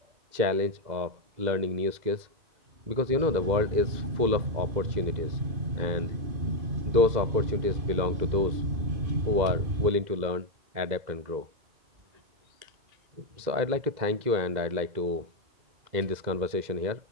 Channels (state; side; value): late; left; 2.0 ms